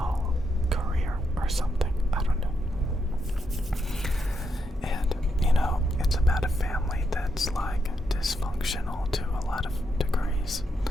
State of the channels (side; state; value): both; normal; correlation 0.81